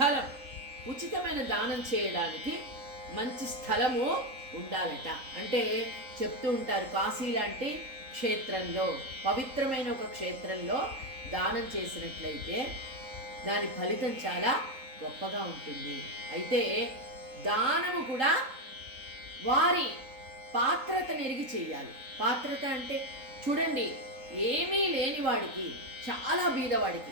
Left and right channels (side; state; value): left; late; 3.9 ms